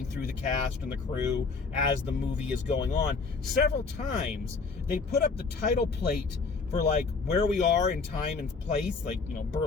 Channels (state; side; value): quieter; right; 4.5 dB